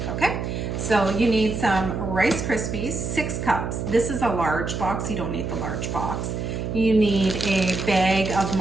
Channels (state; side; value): noise; right; hum, 4 dB below the sound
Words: okay? So you need some Rice Krispies, 6 cups. This is a large box, you don't need the large box. You need a bag of